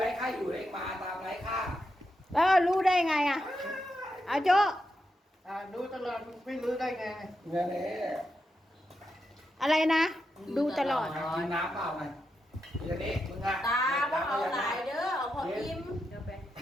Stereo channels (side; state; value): both; normal; correlation 0.85